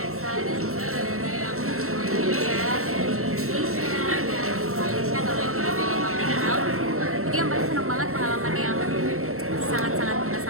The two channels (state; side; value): late; left; 0.63 ms